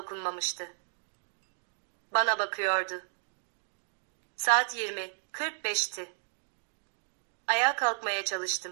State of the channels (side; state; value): left; silent; digital silence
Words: Bana bakıyordu. Saat 20:45'ti. Ayağa kalkmaya